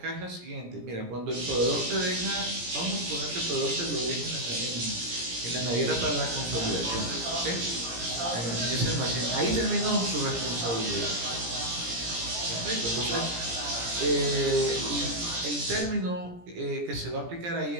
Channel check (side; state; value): left; late; 17 ms